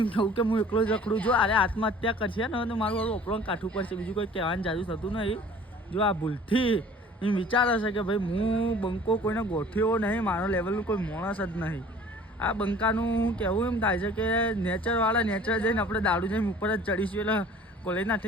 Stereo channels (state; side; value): normal; both; correlation 0.48